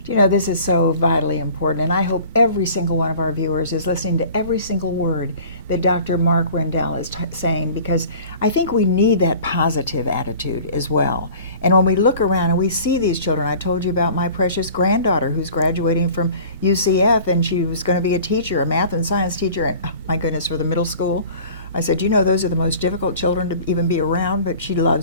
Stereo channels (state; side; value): inverted; both; correlation -0.45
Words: This is so vitally important, and I hope every single one of our viewers is listening to every single word that Dr. Mark Rendell is saying, because I think we need that positive attitude as well. And when we look around and we see these children, I told you about my precious granddaughter who's graduating from UCF, and she was going to be a teacher, a math and science teacher, and oh, my goodness, for the middle school. I said, those are the most difficult children to even be around, but she